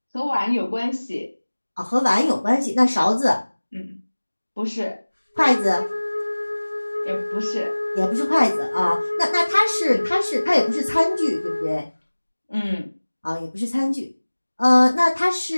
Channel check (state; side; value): inverted; both; correlation -1.00